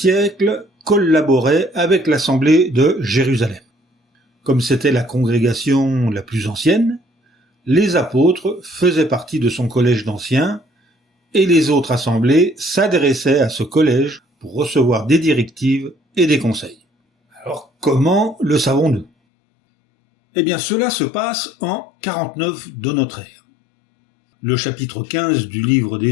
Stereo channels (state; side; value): drops out; right; at 19.1 s